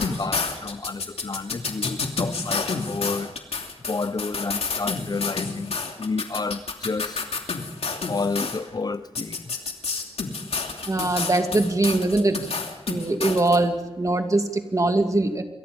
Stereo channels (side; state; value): both; normal; correlation 0.64